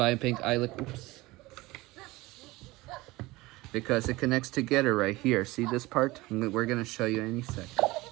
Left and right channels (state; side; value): quieter; left; 20.6 dB